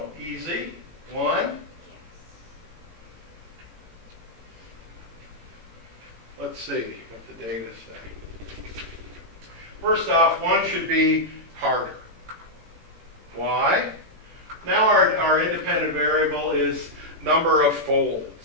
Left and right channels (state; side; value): late; left; 18 ms